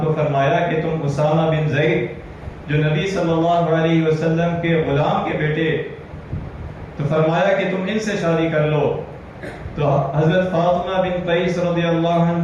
کو فرمایا کہ تم اسامہ بن زید جو نبی صلی اللہ علیہ وسلم کے غلام کے بیٹے، تو فرمایا کہ تم ان سے شادی کر لو. تو حضرت فاطمہ بن قیس رضی اللہ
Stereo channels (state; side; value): identical; both; correlation 1.00